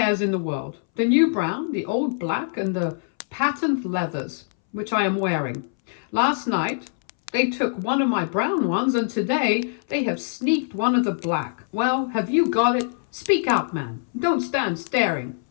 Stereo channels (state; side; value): silent; right; 63 dB below the other